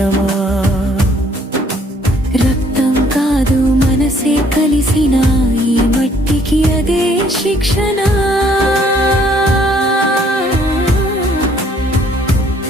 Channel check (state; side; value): normal; both; correlation 0.63